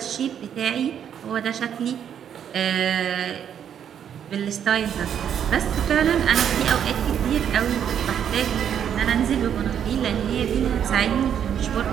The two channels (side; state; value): left; quieter; 8.9 dB